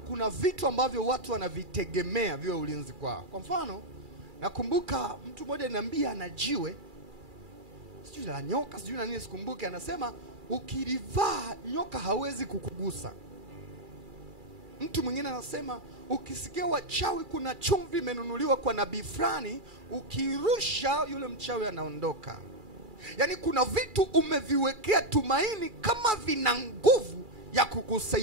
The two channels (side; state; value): left; late; 2.3 ms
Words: vitu ambavyo watu wanavitegemea viwe ulinzi kwao. Kwa mfano, nakumbuka mtu mmoja ananiambia ana jiwe, sijui la nyoka, sijui na nini sikumbuke, anasema ukilivaa nyoka hawezi kukugusa. Mtu mwingine anasema ukisikia wachawi kuna chumvi imenunuliwa kwa nabii fulani, ukirusha yule mchawi anaondoka. Yaani kuna vitu umeviwekea tumaini kama vina nguvu ya